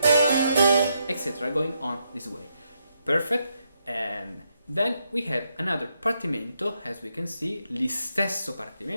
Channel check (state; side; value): inverted; both; correlation -0.79